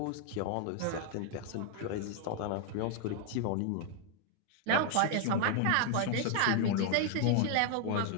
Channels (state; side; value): different; both; correlation 0.00